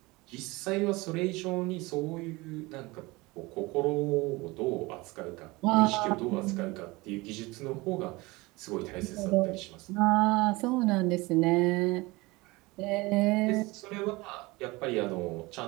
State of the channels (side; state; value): left; quieter; 22.7 dB